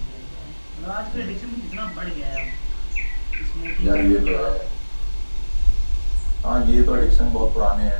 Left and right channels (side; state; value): both; inverted; correlation -1.00